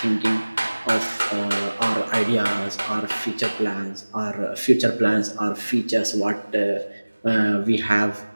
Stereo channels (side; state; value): both; inverted; correlation -1.00